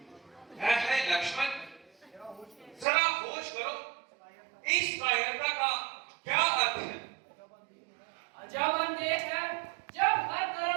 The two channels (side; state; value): left; drops out; at 2.9 s